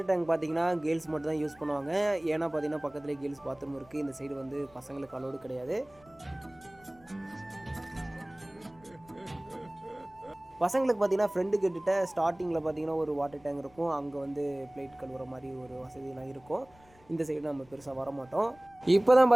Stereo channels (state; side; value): noise; left; rumble, 27 dB below the sound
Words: டேங்க் பார்த்தீங்கன்னா கேர்ள்ஸ் மட்டும் தான் யூஸ் பண்ணுவாங்க. ஏன்னா பார்த்தீங்கன்னா பக்கத்துலேயே கேர்ள்ஸ் பாத்ரூம் இருக்குது. இந்த சைடு வந்து பசங்களுக்கு அலோடு கிடையாது. பசங்களுக்கு பார்த்தீங்கன்னா ஃப்ரெண்டு கிட்ட ஸ்டார்டிங்கில் பார்த்தீங்கன்னா ஒரு வாட்டர் டேங்க் இருக்கும். அங்கே வந்து பிளேட் கழுவுற மாதிரி ஒரு வசதியெலாம் இருக்கும். இந்த சைடு நம்ம பெருசாக வரமாட்டோம். இப்போ தான்